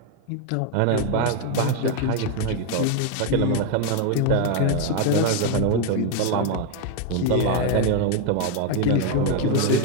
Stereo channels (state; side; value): different; both; correlation 0.01